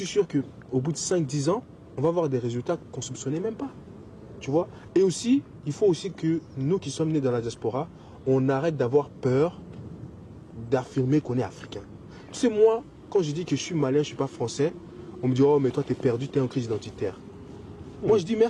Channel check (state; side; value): identical; both; correlation 1.00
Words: sûr qu'au bout de 5-10 ans, on va avoir des résultats qu'on ne soupçonnait même pas. Tu vois? Et aussi, il faut aussi que nous qui sommes nés dans la diaspora, on arrête d'avoir peur d'affirmer qu'on est africain. Tu sais, moi, quand je dis que je suis malien, je ne suis pas français, on me dit, oh, mais toi, tu es perdu, tu es en crise identitaire. Moi, je dis